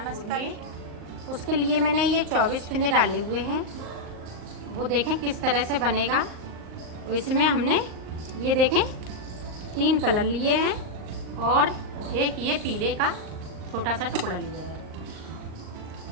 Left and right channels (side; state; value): left; late; 38 ms